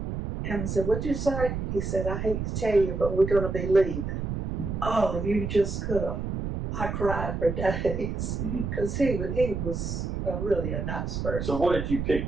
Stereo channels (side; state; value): right; noise; rumble, 3 dB below the sound